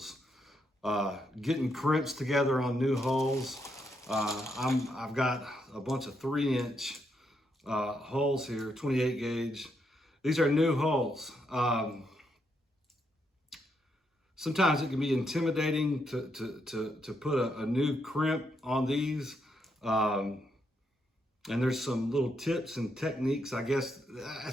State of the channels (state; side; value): normal; both; correlation 0.79